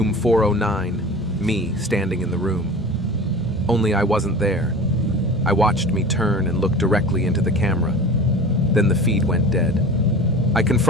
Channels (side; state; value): both; normal; correlation 0.36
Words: 409, me standing in the room. Only I wasn't there. I watched me turn and look directly into the camera. Then the feed went dead. I